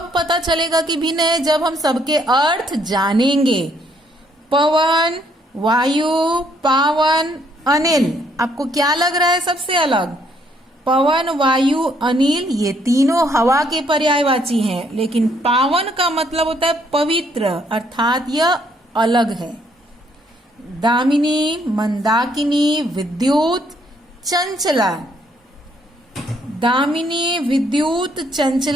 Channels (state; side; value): normal; both; correlation 0.69